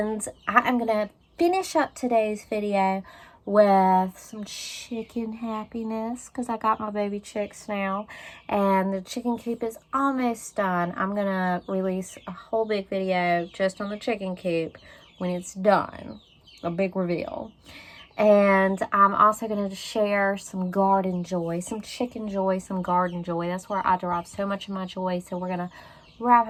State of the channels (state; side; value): identical; both; correlation 1.00